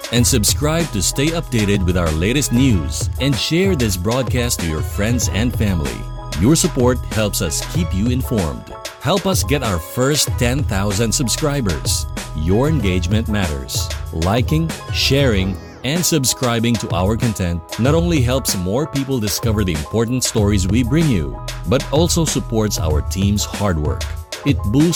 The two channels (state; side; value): identical; both; correlation 1.00